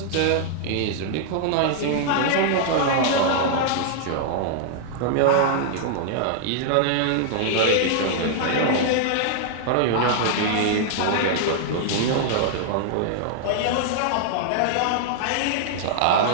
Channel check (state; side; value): different; both; correlation -0.01